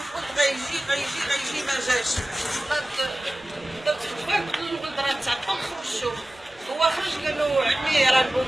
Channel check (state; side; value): normal; both; correlation 0.97